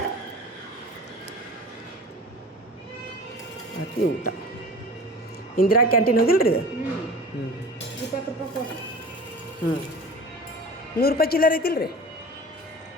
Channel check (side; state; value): both; normal; correlation 0.38